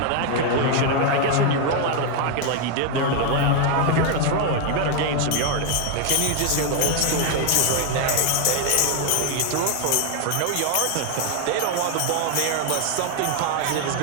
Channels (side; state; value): both; different; correlation 0.00